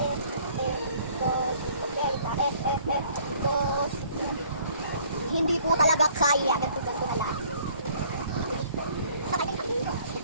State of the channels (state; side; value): inverted; both; correlation -0.58